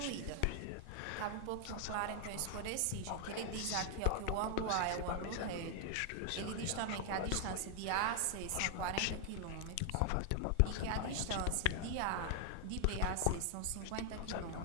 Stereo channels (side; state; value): both; different; correlation 0.00